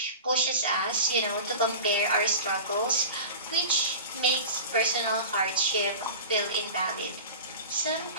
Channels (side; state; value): both; inverted; correlation -0.35